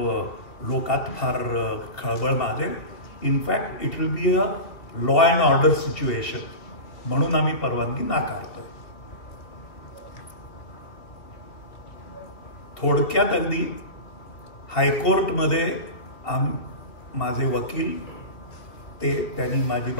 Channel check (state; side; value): late; right; 2.3 ms